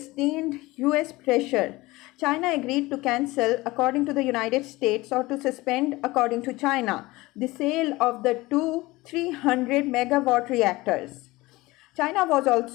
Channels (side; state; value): right; quieter; 20.5 dB